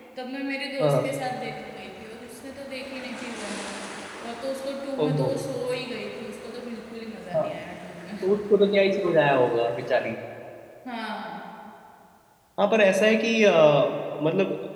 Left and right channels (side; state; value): both; identical; correlation 1.00